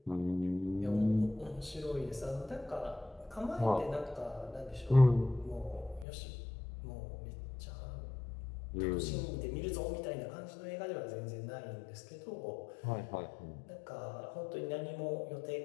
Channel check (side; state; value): right; drops out; at 6.1 s